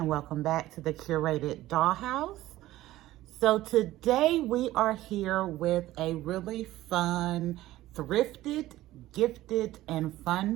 welcome back to the Curated Dollhouse. So today we are here with a really fun, thrifted, gifted, and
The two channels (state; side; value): quieter; left; 15.8 dB